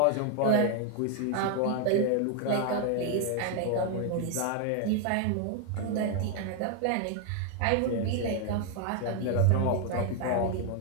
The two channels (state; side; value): different; both; correlation 0.00